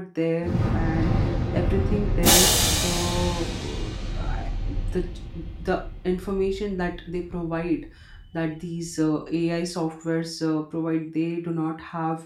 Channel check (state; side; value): identical; both; correlation 1.00